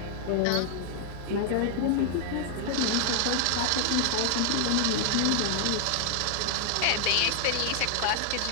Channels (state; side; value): different; both; correlation 0.00